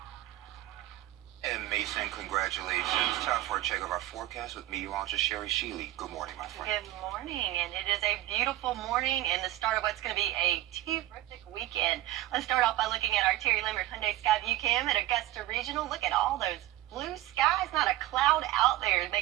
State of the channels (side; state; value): left; quieter; 15.5 dB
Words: And Mason, congratulations. Time for a check of our forecast with meteorologist Sherry Sheely. Good morning, my friend. Good morning, and it is a beautiful morning and the start of what's going to be a terrific weekend. Let's start off by looking at our Terry Limerick Hyundai Skyview Cam at Augusta Regional. Look at all those blue skies, not a cloud out there,